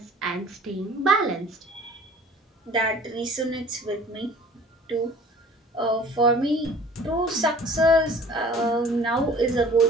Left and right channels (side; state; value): both; normal; correlation 0.48